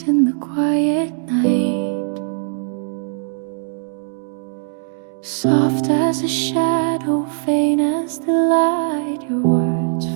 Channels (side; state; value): left; silent; digital silence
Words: in the quiet night, soft as a shadow, faint as the light. Your words